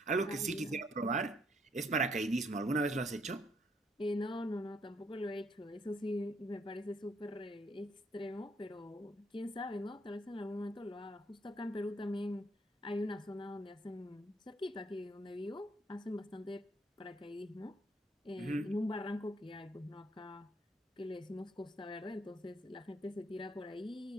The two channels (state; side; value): normal; both; correlation 0.69